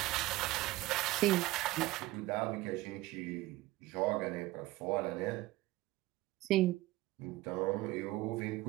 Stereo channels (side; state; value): left; quieter; 18.0 dB